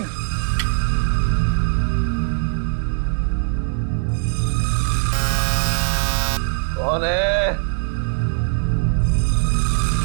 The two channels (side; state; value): left; silent; 65 dB below the other